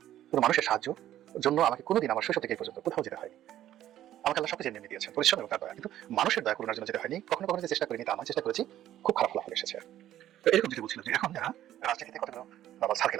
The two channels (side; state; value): left; quieter; 12.5 dB